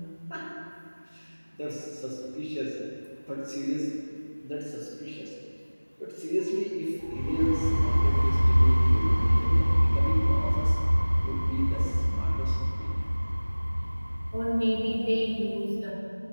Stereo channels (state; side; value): inverted; both; correlation -1.00